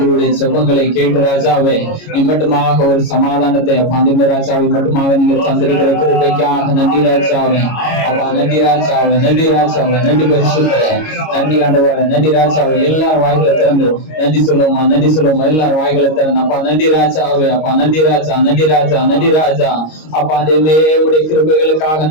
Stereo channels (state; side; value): late; right; 25 ms